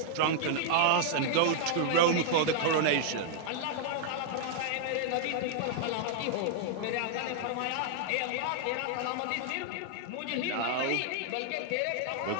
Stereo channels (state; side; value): different; both; correlation -0.01